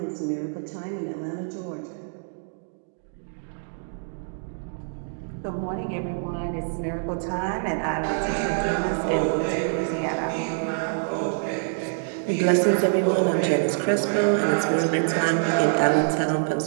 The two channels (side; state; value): left; silent; digital silence